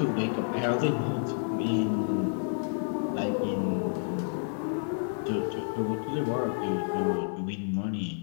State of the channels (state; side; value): silent; right; digital silence